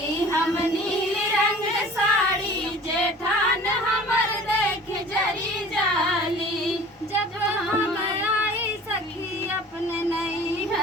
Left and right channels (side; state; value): both; normal; correlation 0.44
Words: हम नील रंग साड़ी जेठान हमर देख जरी जाली। जब हम आई सखी अपने